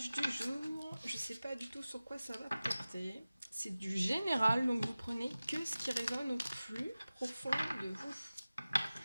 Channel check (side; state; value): both; inverted; correlation -0.97